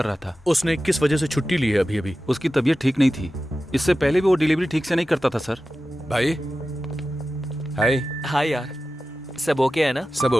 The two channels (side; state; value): both; normal; correlation 0.94